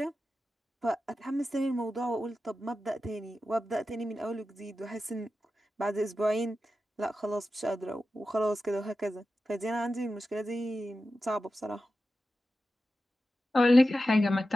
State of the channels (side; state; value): both; normal; correlation 0.92